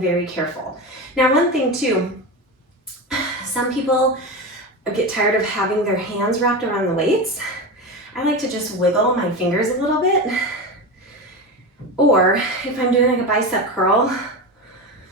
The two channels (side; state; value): both; normal; correlation 0.21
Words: careful. Now, one thing too, some people get tired of having their hands wrapped around the weights. I like to just wiggle my fingers a little bit. Or if I'm doing like a bicep curl,